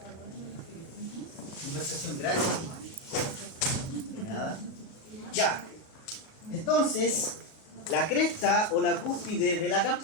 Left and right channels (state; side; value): late; right; 37 ms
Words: Conversación gratis. Nada. Ya. Entonces, la cresta o la cúspide de la